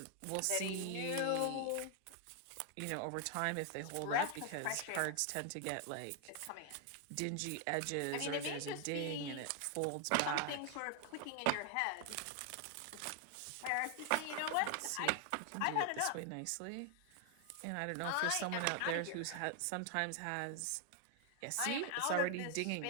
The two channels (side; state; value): both; different; correlation 0.00